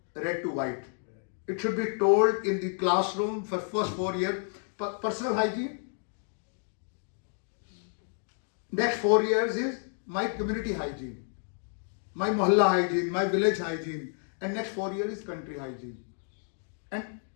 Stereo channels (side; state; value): right; silent; 58 dB below the other